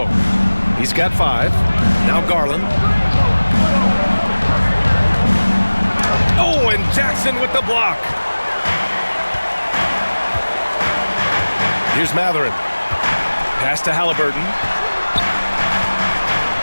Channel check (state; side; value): inverted; both; correlation -1.00